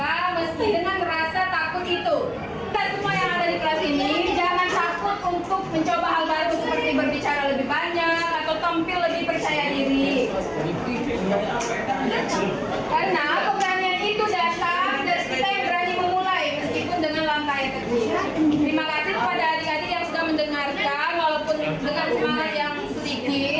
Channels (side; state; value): both; identical; correlation 1.00